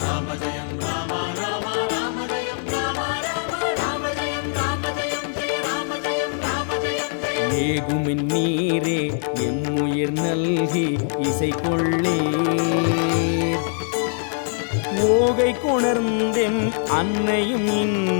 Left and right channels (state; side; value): silent; right; digital silence